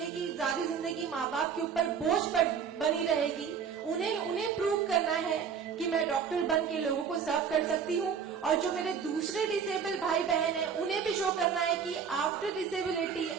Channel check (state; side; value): quieter; left; 6.9 dB